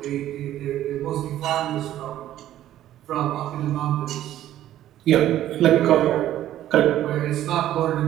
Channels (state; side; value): quieter; left; 12.7 dB